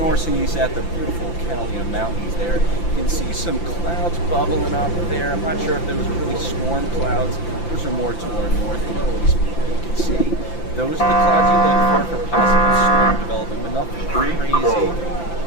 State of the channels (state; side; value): late; right; 5.9 ms